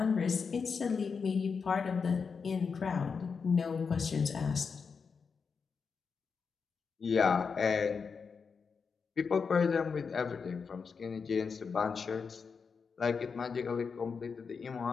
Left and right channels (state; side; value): quieter; right; 5.5 dB